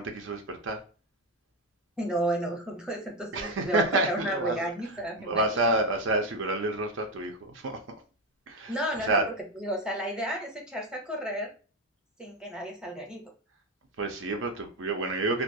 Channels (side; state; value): both; normal; correlation 0.11